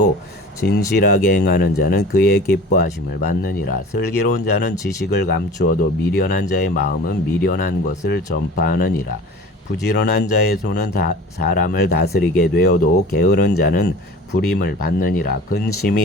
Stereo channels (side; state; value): both; normal; correlation 0.40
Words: 진실하게 행하는 자는 그의 기뻐하심을 받느니라. 슬기로운 자는 지식을 감추어도 미련한 자의 마음은 미련한 것을 전파하느니라. 부지런한 자의 손은 사람을 다스리게 되어도 게으른 자는 불임을 받느니라.